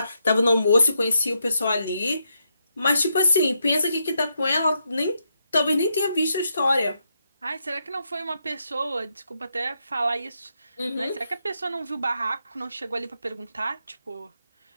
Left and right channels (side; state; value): both; inverted; correlation -0.81